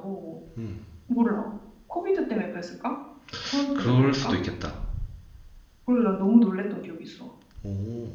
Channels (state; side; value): identical; both; correlation 1.00